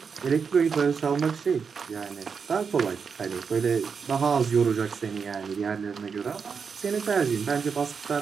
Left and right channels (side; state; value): left; quieter; 5.9 dB